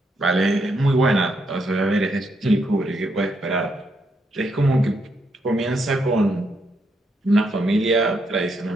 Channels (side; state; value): both; normal; correlation 0.78